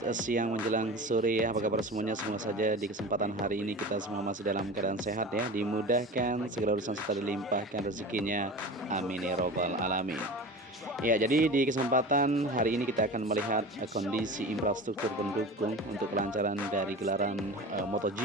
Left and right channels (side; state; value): both; normal; correlation 0.33